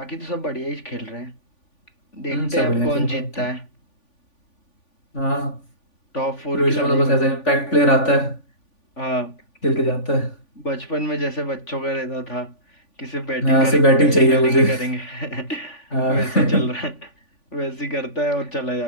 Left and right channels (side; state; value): right; late; 3.5 ms